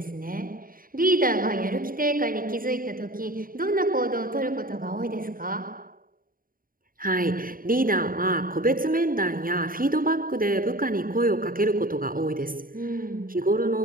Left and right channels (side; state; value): left; late; 0.41 ms